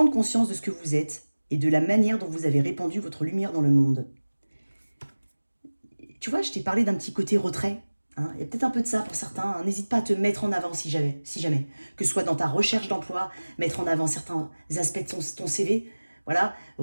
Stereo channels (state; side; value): inverted; both; correlation -1.00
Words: conscience de ce que vous êtes et de la manière dont vous avez répandu votre lumière dans le monde. Tu vois, je t'ai parlé d'un petit côté retrait. Hein. Il y a peut-être un peu de ça pour certains. Hein. N'hésite pas à te mettre en avant si jamais. Que ce soit dans ta recherche d'emploi, mettre en avant certains aspects de ton CV. Voilà,